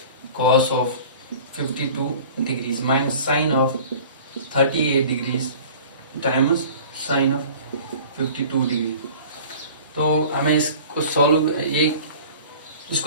cos of 52 degrees minus sine of 38 degrees times sine of 52 degree. तो हमें इसको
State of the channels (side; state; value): both; inverted; correlation -0.44